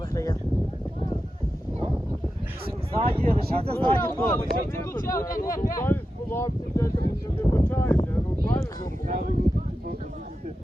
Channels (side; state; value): both; normal; correlation 0.90